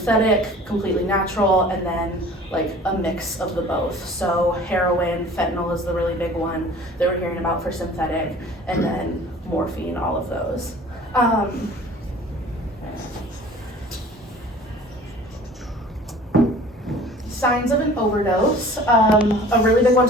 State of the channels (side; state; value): both; normal; correlation 0.46